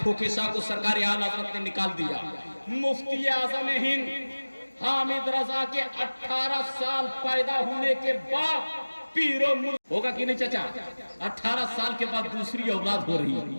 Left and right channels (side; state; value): both; inverted; correlation -1.00